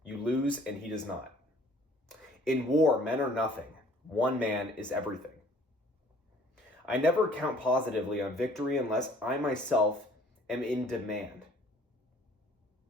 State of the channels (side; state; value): both; normal; correlation 0.55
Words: You lose and he does not. In war, men are nothing. One man is everything. I never count positively on victory unless I myself am in demand.